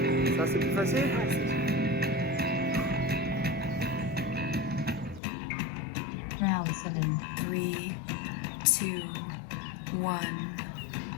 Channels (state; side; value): drops out; right; at 5.2 s